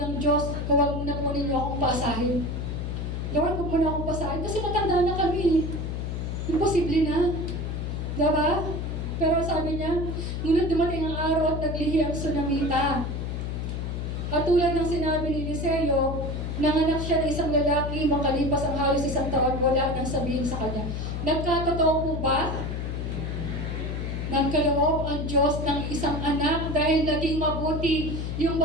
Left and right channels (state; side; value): noise; left; hum, 3 dB below the sound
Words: ng Diyos, huwag mo na po ninyo akong paasahin. Lord, huwag mo na akong paasahin, kasi matanda na kami. Imposible na. Diba? Pero sabi niya, ngunit dumating ang araw at naglihi ang Sunamita. At tulad ng sinabi ni Eliseo, nanganak siya ng isang lalaki, makalipas ang halos 1 taon, wala nang sabihin sa kanya. Nagkatotoo po ba? Nagkaloob ang Diyos ng isang anak dahil naging mabuti yung